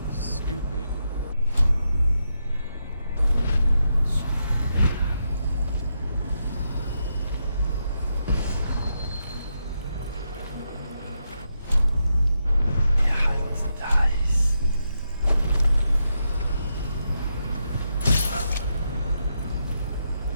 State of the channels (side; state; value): both; inverted; correlation -0.83